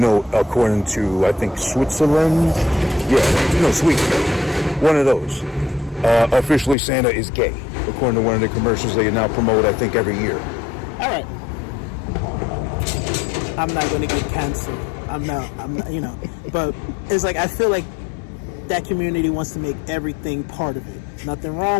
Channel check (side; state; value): right; drops out; at 6.8 s